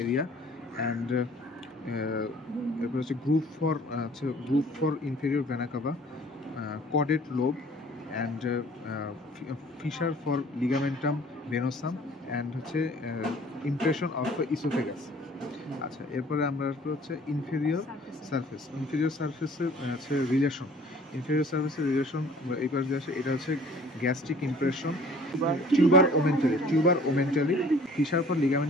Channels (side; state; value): both; normal; correlation 0.52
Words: area, and এরপর হচ্ছে group for inferior vena CAVA, chordate lobe, and fissure for ligamentum venosum, and হচ্ছে impression of esophagus। আচ্ছা, এরপরে আমরা হচ্ছে ইনফেরিয়র সারফেসের হচ্ছে রিলেশন। ইনফেরিয়র সারফেসের রিলেশন এইবার যে আসে, এটা হচ্ছে gastric impression, tuber omentale, fissure for